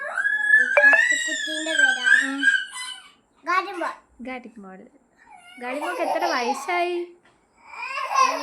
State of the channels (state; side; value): identical; both; correlation 1.00